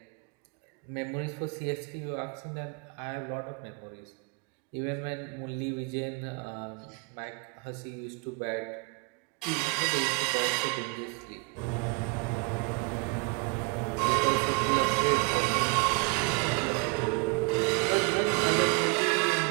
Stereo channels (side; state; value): left; quieter; 29.1 dB